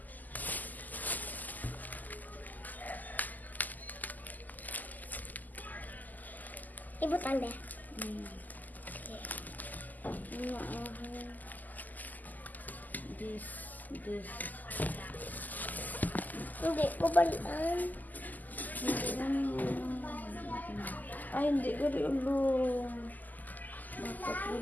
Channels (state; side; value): late; right; 0.083 ms